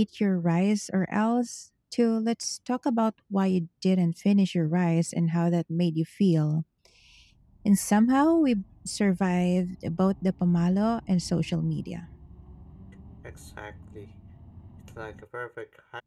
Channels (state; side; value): identical; both; correlation 1.00